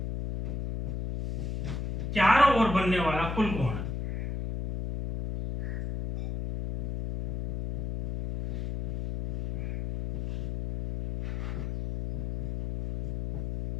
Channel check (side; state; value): left; noise; hum, 3 dB below the sound